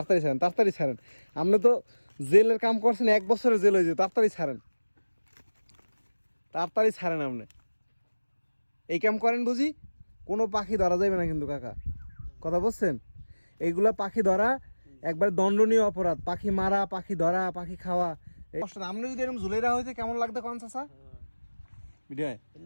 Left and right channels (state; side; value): inverted; both; correlation -1.00